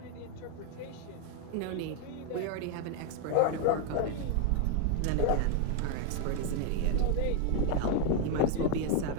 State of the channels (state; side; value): different; both; correlation 0.01